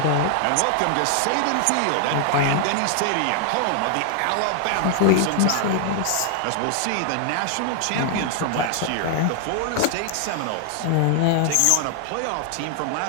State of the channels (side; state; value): both; different; correlation 0.00